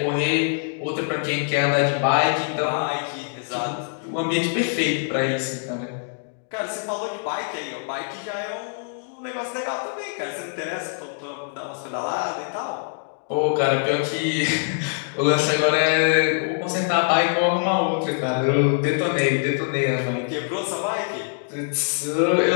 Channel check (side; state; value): right; silent; digital silence